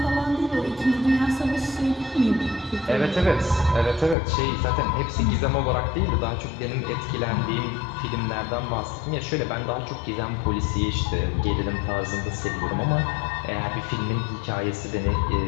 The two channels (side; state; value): right; drops out; at 4.2 s